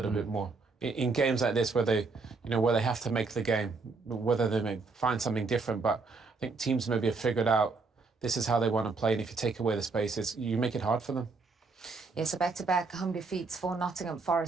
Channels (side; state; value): left; quieter; 4.2 dB